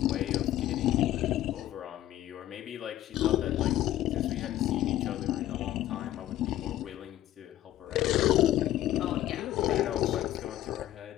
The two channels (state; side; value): quieter; right; 13.5 dB